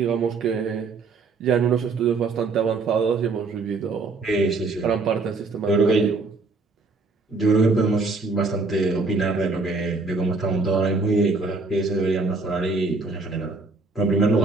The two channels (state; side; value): quieter; left; 3.8 dB